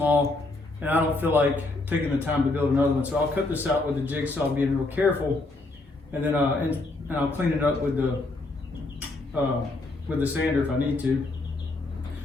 and I don't feel like taking the time to build another one. So I'll cut this out with the jigsaw, being real careful. And then and I'll clean it up with the sander if I need to.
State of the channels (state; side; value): quieter; right; 3.1 dB